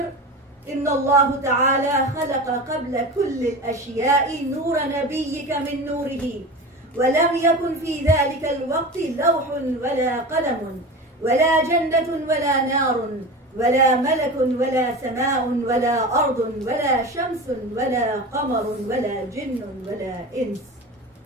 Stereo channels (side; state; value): both; normal; correlation 0.29